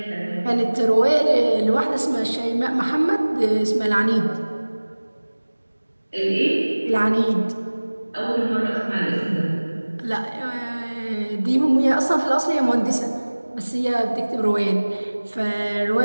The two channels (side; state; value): both; inverted; correlation -1.00